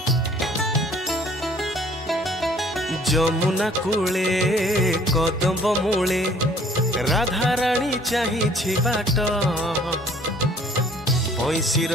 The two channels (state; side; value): normal; both; correlation 0.56